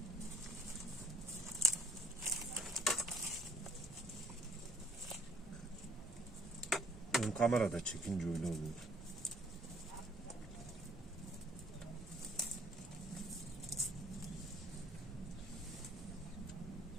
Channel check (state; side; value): normal; both; correlation 0.56